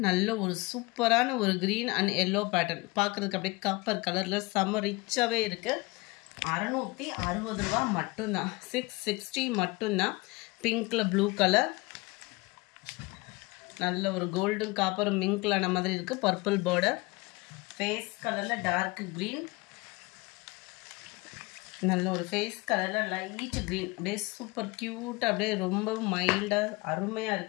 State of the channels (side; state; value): right; quieter; 24.3 dB